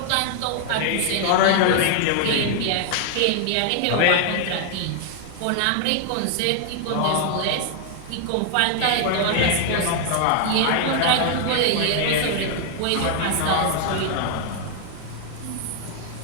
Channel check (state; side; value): different; both; correlation 0.00